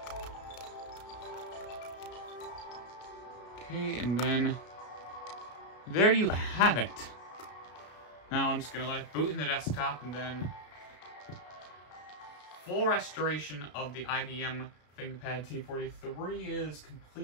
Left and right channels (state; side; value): late; right; 33 ms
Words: Okay, and then, there you have it. Now I'm just going to let it boot in the desktop, and then full restoration of the IBM Thinkpad T43 is